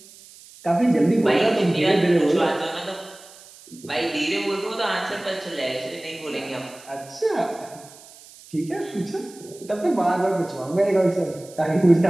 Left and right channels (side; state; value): right; noise; hiss, 21 dB below the sound